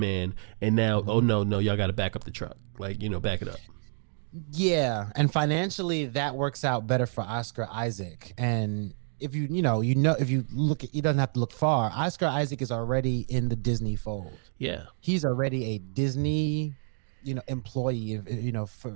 and now, oh no, y'all got to back up the truck. Like, back it up. Yeah, and financially that works out better for Oscar Isaac. And if if you look at, you doesn't have to look far. Oscar Isaac is already in the Disney fold. Yeah, he's already a Disney, employee.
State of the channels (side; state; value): left; silent; digital silence